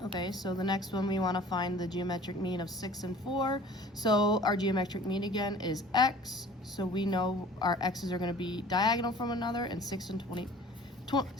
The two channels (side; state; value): both; normal; correlation 0.47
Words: Okay, so the next one we want to find the geometric mean of 6 and 4. So our geometric mean again is x. So we know our x's are going to be diagonal from another, and 6 and 24